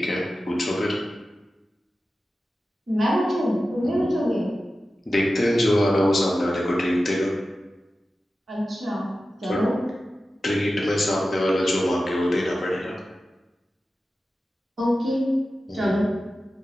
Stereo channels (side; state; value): both; normal; correlation 0.94